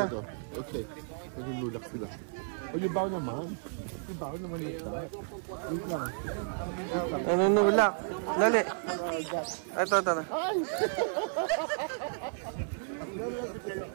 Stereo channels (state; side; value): silent; left; 56 dB below the other